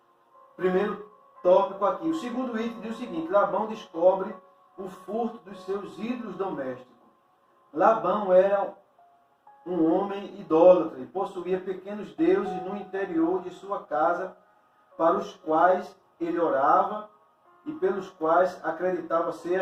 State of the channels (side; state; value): both; identical; correlation 1.00